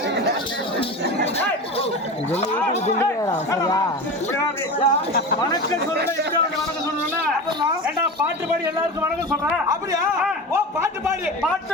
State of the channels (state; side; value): normal; both; correlation 0.28